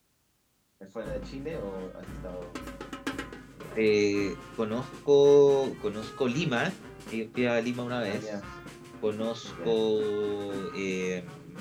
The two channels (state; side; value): identical; both; correlation 1.00